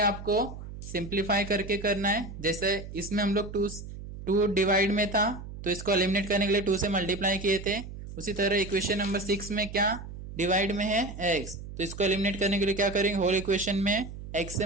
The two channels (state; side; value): noise; right; hum, 11 dB below the sound